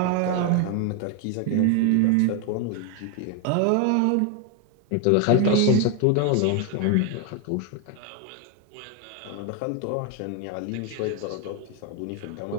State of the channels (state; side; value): different; both; correlation 0.01